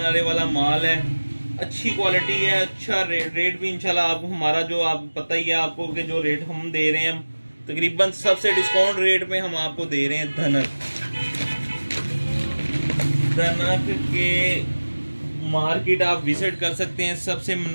वाला माल है, अच्छी क्वालिटी है, अच्छा रेट भी इंशाल्लाह आप हमारा जो आप पता ही है आपको कि जो रेट हम दे रहे हैं तकरीबन सबसे डिस्काउंट रेट में हम आपको दे रहे हैं। धनक के मार्केट आप विजिट कर सकते हैं, सबसे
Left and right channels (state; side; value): inverted; both; correlation -1.00